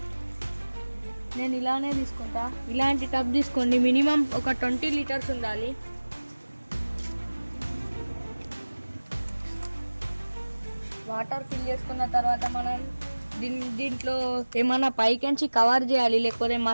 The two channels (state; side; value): inverted; both; correlation -1.00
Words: నేను ఇలానే తీసుకుంటా. ఇలాంటి టబ్ తీసుకోండి. మినిమం ఒక 20 లీటర్స్ ఉండాలి. వాటర్ ఫిల్ చేసుకున్న తర్వాత మనం దీంట్లో ఏమన్నా పైకించి కవర్ చేయాలి, లేకపోతే